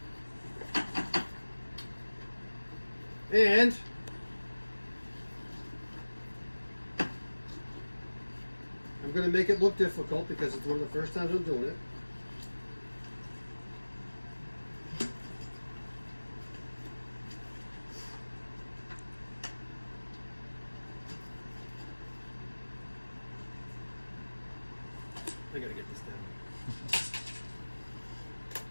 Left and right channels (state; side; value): inverted; both; correlation -1.00